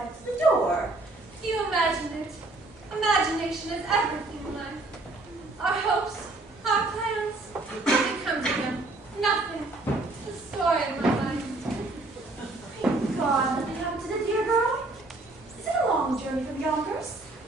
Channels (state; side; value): quieter; left; 3.0 dB